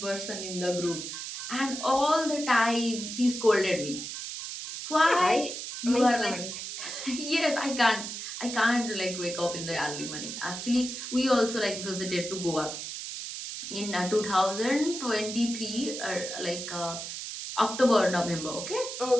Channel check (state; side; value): noise; right; hiss, 7 dB below the sound